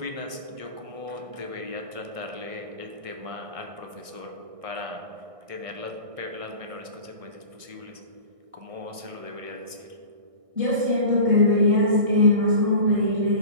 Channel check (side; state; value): left; late; 1.6 ms